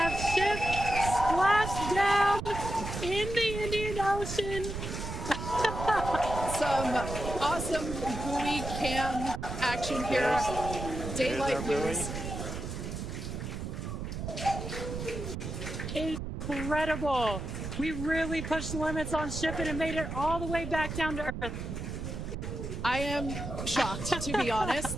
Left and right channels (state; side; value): noise; right; rumble, 6 dB below the sound